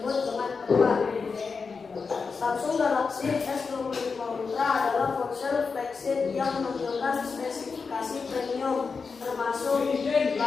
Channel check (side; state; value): right; quieter; 5.0 dB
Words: dengan tepat. Samsung Galaxy S25 Ultra adalah ponsel flagship yang menampilkan spesifikasi spesifikasi premium, termasuk